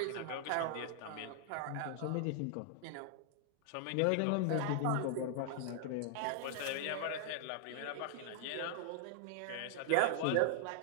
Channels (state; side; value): different; both; correlation -0.01